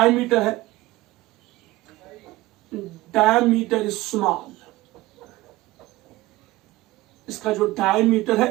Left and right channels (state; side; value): quieter; left; 18.4 dB